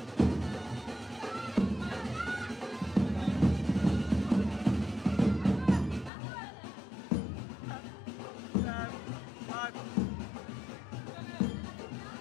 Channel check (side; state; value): right; drops out; at 6.1 s